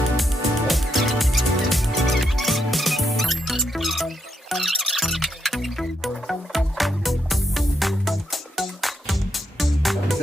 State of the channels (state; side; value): normal; both; correlation 0.80